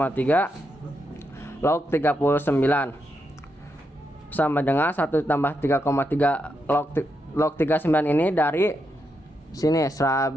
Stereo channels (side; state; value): both; normal; correlation 0.83